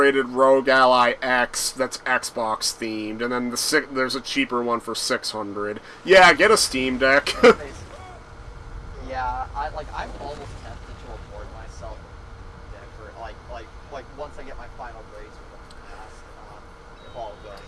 Rogue Ally X that's Xbox themed, and then there's a cheaper one for $600. Yeah, get a Steam Deck. Yeah, I'm almost tempted to reward myself for like once I get my final grades for the class, if all goes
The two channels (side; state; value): both; identical; correlation 1.00